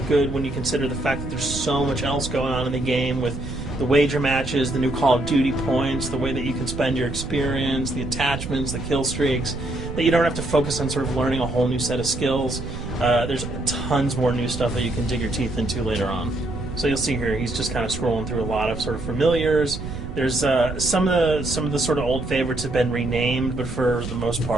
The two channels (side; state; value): right; noise; rumble, 7 dB below the sound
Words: good when you consider the fact that there's so much else going on in the game with the wager matches, the new Call of Duty points, the way that you can spend your experience, the attachments, the kill streaks, that you don't have to focus on sort of learning a whole new set of skills. There's tons more new stuff that you can dig your teeth into later on. So you'll see here, he's just kind of scrolling through a lot of sort of familiars. There's some of the sort of old favorites have been renamed, but for the most